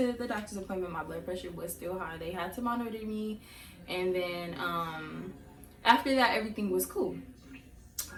the doctor's appointment. My blood pressure was still high. They had to monitor me, and then after that, everything was cool.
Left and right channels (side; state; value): both; identical; correlation 1.00